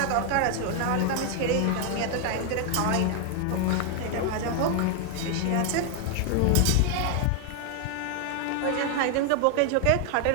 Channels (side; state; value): both; different; correlation 0.00